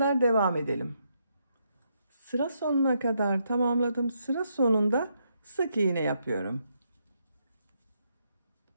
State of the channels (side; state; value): both; inverted; correlation -0.78